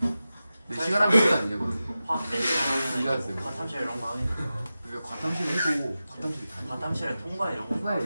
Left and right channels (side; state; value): both; inverted; correlation -0.94